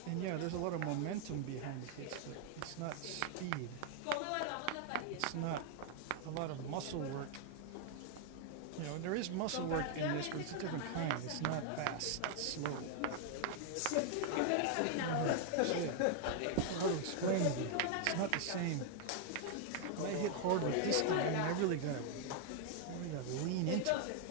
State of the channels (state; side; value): different; both; correlation 0.00